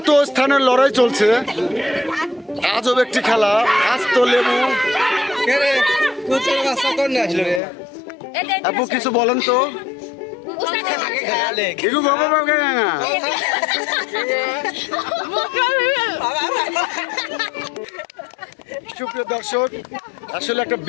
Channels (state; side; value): drops out; right; at 7.6 s